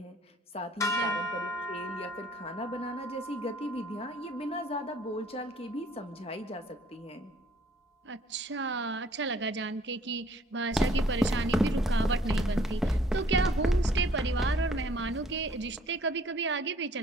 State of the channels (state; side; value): normal; both; correlation 0.59